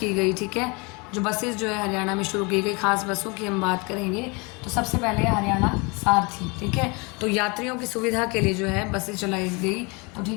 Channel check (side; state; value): right; quieter; 28.7 dB